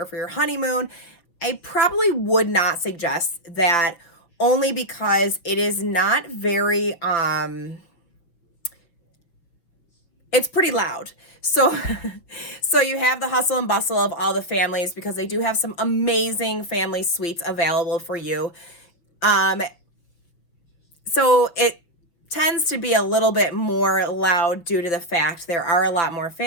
for your honeymoon, I probably would not suggest that, only because it is not very it's pretty loud. So so you have the hustle and bustle of all the families, because they do have some amazing family suites available for you. Um so it tends to be a little bit more loud due to the fact there are a lot more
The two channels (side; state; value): right; late; 6.0 ms